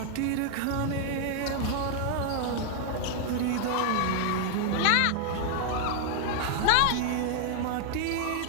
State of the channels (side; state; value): both; different; correlation 0.00